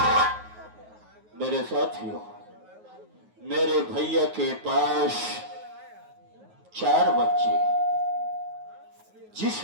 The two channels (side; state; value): left; late; 9.4 ms